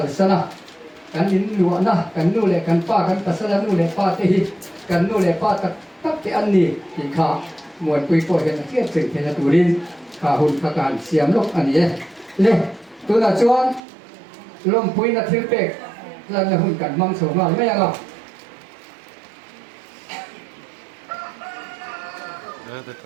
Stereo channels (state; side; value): drops out; left; at 13.8 s